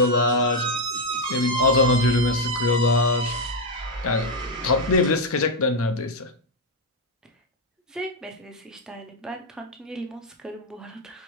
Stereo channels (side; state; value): both; normal; correlation 0.02